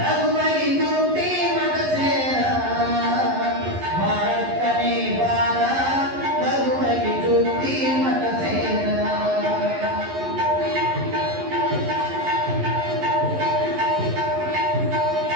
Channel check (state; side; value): late; left; 11 ms